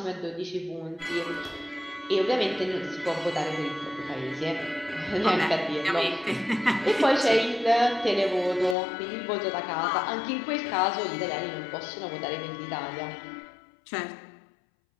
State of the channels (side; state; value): right; drops out; at 8.8 s